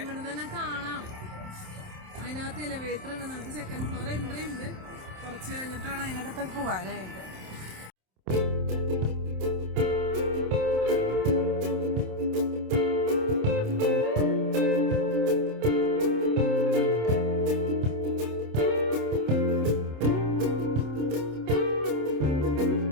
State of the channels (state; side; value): late; left; 27 ms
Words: ഇവിടെ തന്നെ കാണാം. അതിനകത്ത് എലിവേറ്റർ ഉണ്ട്. നമുക്ക് സെക്കൻഡ് ഫ്ലോർ എൻട്രി ഉണ്ട്. കുറച്ച് കഴിഞ്ഞിട്ടാണ് അതിനകത്തൊക്കെ പോകാനായിട്ട്.